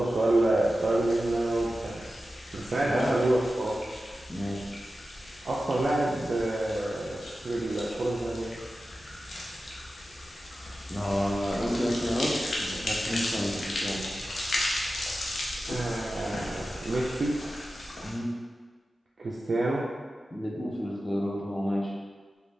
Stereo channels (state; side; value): normal; both; correlation 0.93